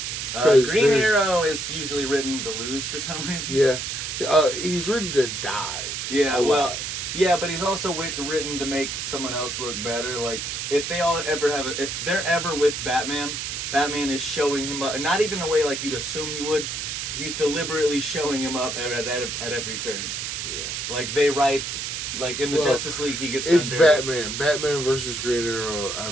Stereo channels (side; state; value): right; noise; hiss, 4 dB below the sound